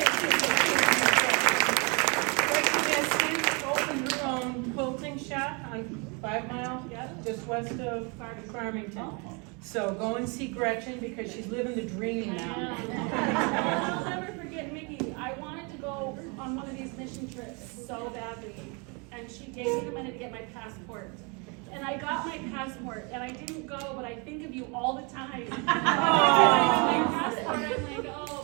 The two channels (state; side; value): quieter; left; 32.1 dB